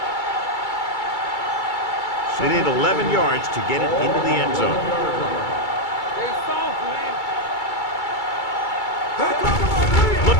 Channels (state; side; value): late; right; 2.3 ms